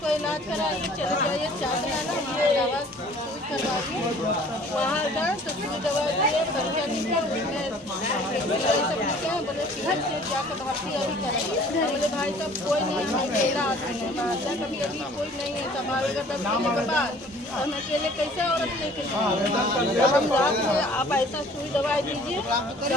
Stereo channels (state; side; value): normal; both; correlation 0.52